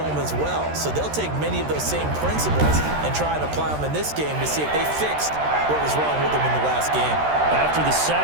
as well. So they'll take many of those same principles and try and apply them in this game to see if they fixed what was wrong with them in the last game. After the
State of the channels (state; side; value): late; left; 13 ms